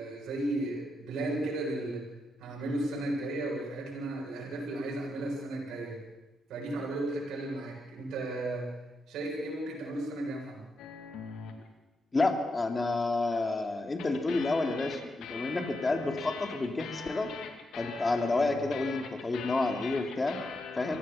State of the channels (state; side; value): normal; both; correlation 0.84